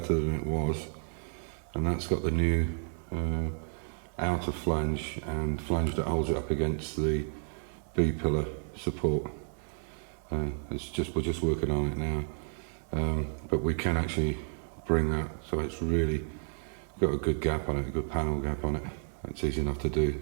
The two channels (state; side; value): silent; left; 57 dB below the other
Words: than it was. And that's got the new outer flange and flange that holds it up against the B-pillar support. We're just working on it now, but we can actually bring that so it's really got a good gap on it, a good panel gap on it. It's easy enough to do